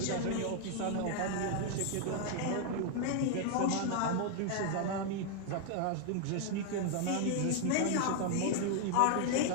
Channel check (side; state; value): both; different; correlation 0.00